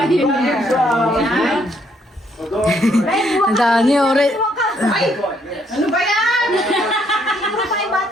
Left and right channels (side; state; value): both; normal; correlation 0.70